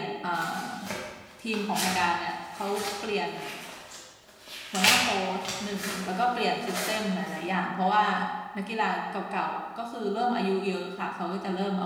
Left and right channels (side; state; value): both; identical; correlation 1.00